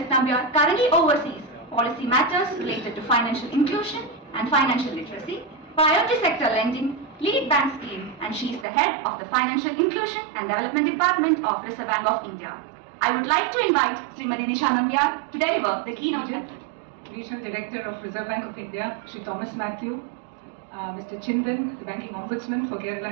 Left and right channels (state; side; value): drops out; left; at 8.7 s